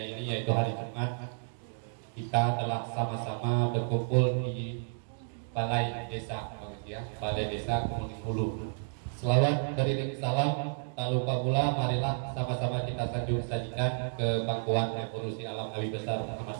ini yaitu hari Jumat kita telah sama-sama berkumpul di Balai Desa, Balai Desa Kemuning Hulu. Selawat beriring salam, tak lupa pula marilah sama-sama kita sajikan ke pangkuan revolusi alam Nabi besar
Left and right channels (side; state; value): left; silent; digital silence